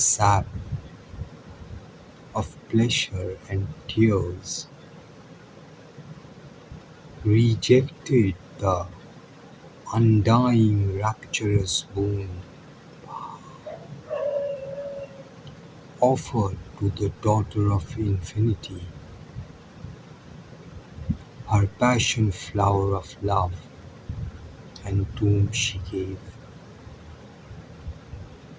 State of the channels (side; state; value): both; identical; correlation 1.00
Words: of pleasure and tears. Rejected the undying rapturous boon offered to the daughter of infinity, her passion flower of love, and tomb she gave,